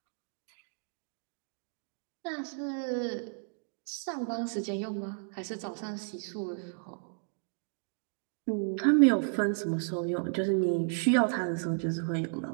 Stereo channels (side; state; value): left; silent; 56 dB below the other